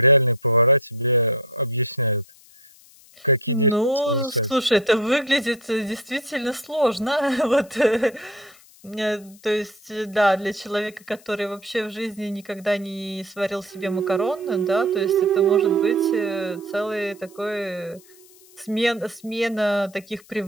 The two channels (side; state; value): left; noise; hiss, 25 dB below the sound